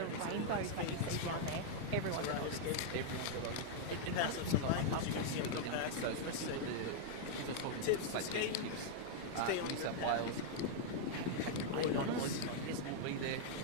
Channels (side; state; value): both; different; correlation -0.01